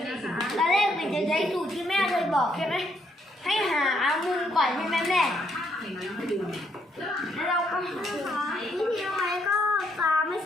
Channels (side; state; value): both; normal; correlation 0.73